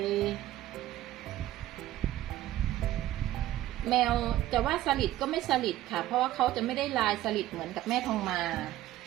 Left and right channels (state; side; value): quieter; left; 14.3 dB